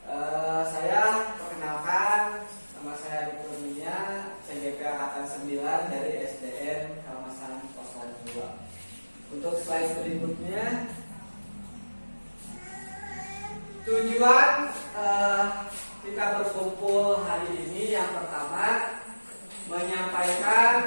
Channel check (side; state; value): both; inverted; correlation -1.00